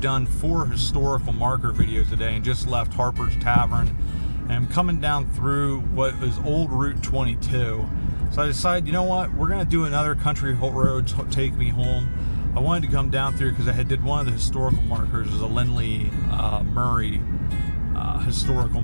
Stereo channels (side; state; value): both; inverted; correlation -1.00